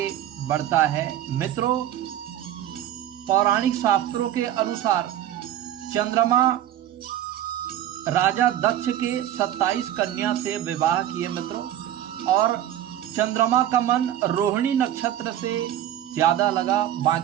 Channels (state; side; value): quieter; left; 11.8 dB